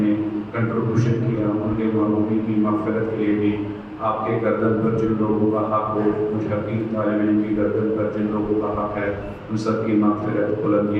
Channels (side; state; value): both; identical; correlation 1.00